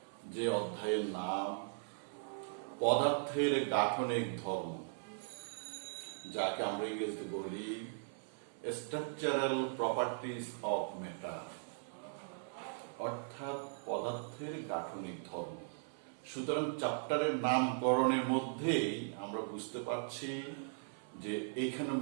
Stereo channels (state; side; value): silent; left; 52 dB below the other